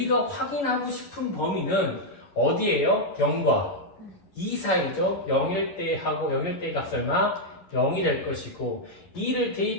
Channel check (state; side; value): late; right; 11 ms